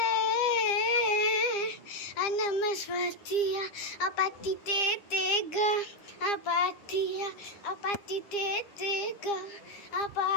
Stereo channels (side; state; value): right; late; 9.9 ms